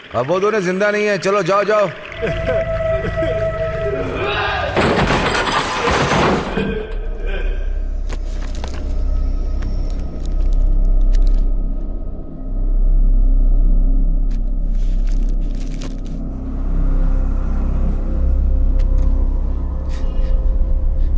अब वो दोनों जिंदा नहीं है। चलो जाओ जाओ।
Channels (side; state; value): both; identical; correlation 1.00